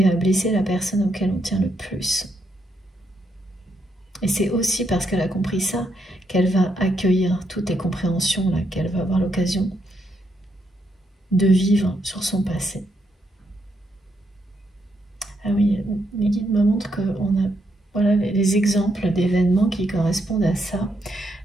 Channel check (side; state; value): both; normal; correlation 0.78